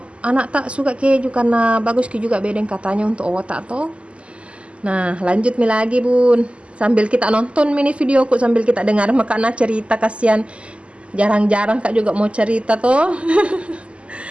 anak tak suka keju, karena bagus juga bedeng katanya untuk otak toh. Nah lanjut lagi bun, sambil kita nonton mini videoku, sambil kita dengar makanya cerita, kasihan. Jarang-jarang kak juga mau cerita toh.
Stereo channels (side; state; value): left; late; 0.056 ms